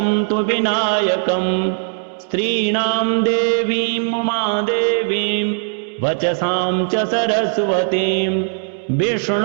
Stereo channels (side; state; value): left; silent; 67 dB below the other